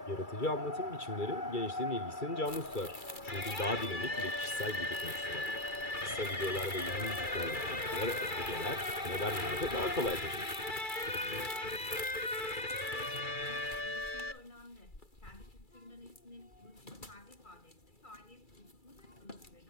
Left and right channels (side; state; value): right; late; 2.3 ms